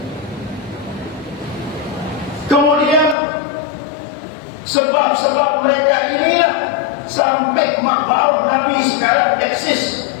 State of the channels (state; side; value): drops out; right; at 3.2 s